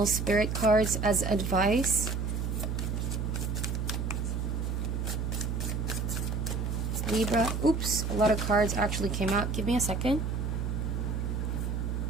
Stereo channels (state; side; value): noise; right; hum, 1 dB below the sound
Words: spirit cards as advice. Libra, oops, a lot of cards actually came out. Give me a second.